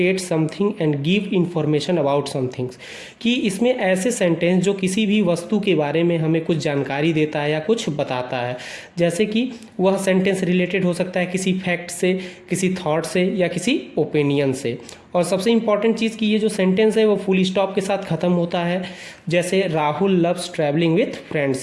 something and give information about somethings, कि इसमें ऐसे सेंटेंस जो किसी भी वस्तु के बारे में हमें कुछ जानकारी देता है या कुछ बताता है। जैसे कि वह सेंटेंस रिलेटेड हो सकता है किसी फैक्ट से, किसी थॉट से या किसी ओपिनियन से। और सबसे इंपॉर्टेंट चीज़ कि ये जो सेंटेंस है वो फुल स्टॉप के साथ ख़त्म होता है। जैसे Rahul loves travelling with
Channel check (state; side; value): identical; both; correlation 1.00